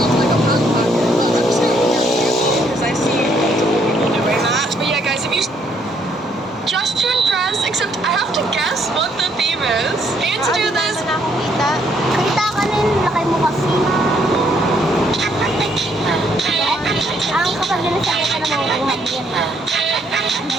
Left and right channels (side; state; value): both; normal; correlation 0.69